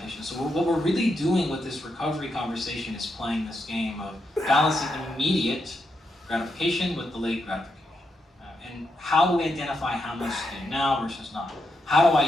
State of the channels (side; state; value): both; normal; correlation 0.83